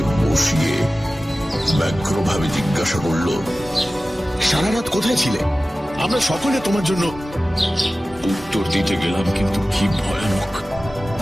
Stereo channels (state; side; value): normal; both; correlation 0.96